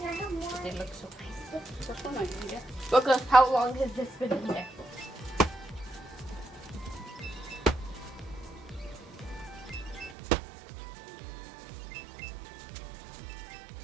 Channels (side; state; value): left; drops out; at 10.2 s